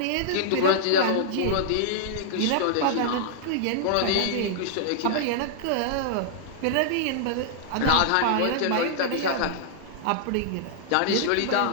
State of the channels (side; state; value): both; different; correlation -0.01